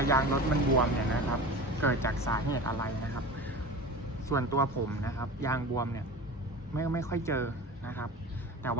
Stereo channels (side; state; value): both; normal; correlation 0.33